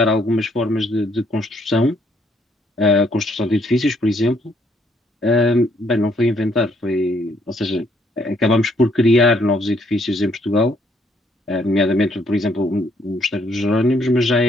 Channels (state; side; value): normal; both; correlation 0.69